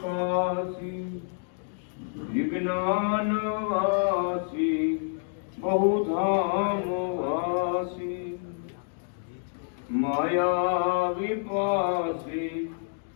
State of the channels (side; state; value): right; silent; digital silence